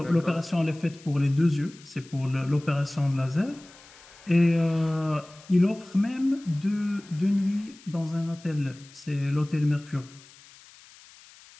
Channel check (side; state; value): left; noise; hiss, 23 dB below the sound